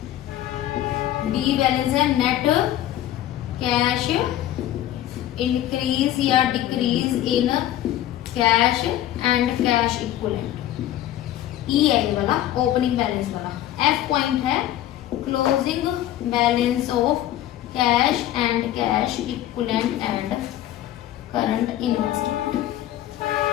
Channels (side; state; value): right; quieter; 13.1 dB